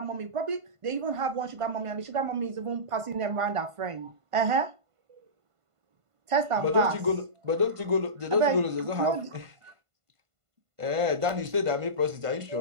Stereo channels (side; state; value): left; late; 1.5 ms